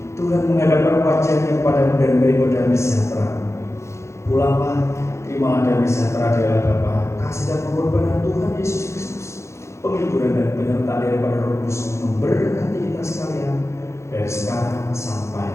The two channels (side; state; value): right; late; 0.14 ms